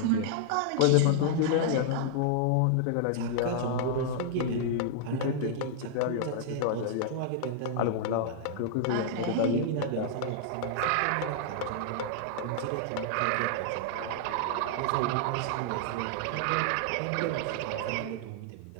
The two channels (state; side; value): different; both; correlation -0.01